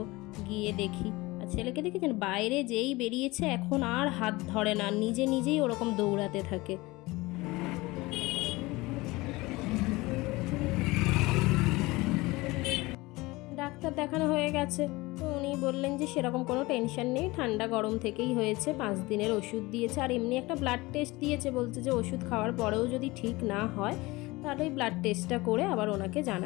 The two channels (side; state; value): right; quieter; 21.7 dB